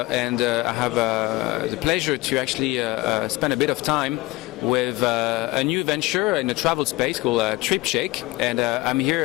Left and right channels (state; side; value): quieter; right; 20.6 dB